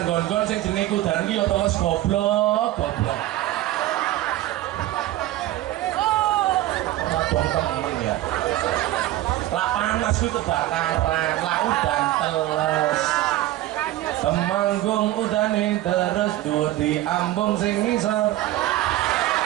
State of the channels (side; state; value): left; quieter; 15.3 dB